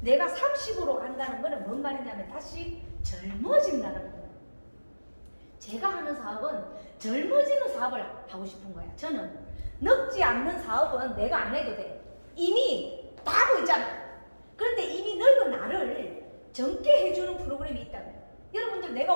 내가 30으로 간다는 거는 뭔 말이냐면 다시 젊어진다는 거예요. 제가 하는 사업은 젊어지는 사업을 하고 싶은 거야. 저는 늙지 않는 사업은 내가 안 해도 돼. 이미 다 하고 있잖아. 그런데 이미 늙은 나를 젊게 해주는 프로그램이 있다면 여러분들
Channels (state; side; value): inverted; both; correlation -1.00